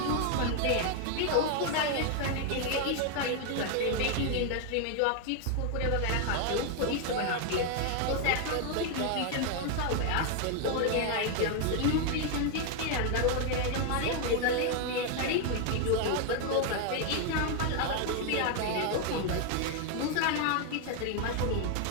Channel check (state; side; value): different; both; correlation 0.00